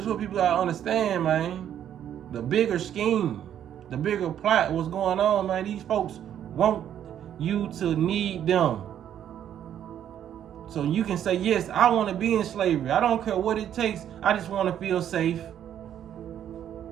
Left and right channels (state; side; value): quieter; left; 10.1 dB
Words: is what people gotta understand, man. The bigger scheme, the bigger plot, what's going on, man. These folks want you to need them. So you can say, yes, I want to be in slavery. I don't care what it takes. I just want to feel safe.